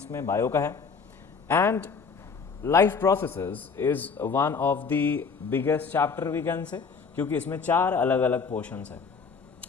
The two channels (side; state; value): right; quieter; 5.4 dB